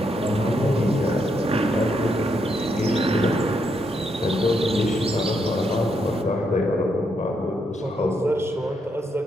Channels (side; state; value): both; normal; correlation 0.78